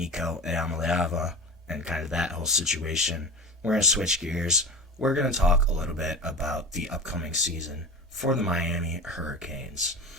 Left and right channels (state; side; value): normal; both; correlation 0.30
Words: Eamaleava and kind of that whole situation. We're going to switch gears. We're going to talk a little bit about the upcoming season for the Miami Hurricanes.